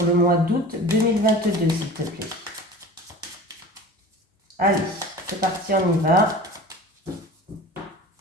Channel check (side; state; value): both; normal; correlation 0.38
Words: le mois d'août 2022, s'il te plaît. Allez, c'est parti, on y va.